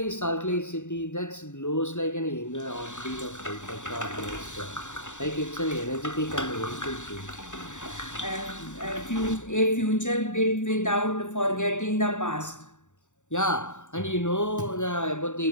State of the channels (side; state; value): right; late; 0.85 ms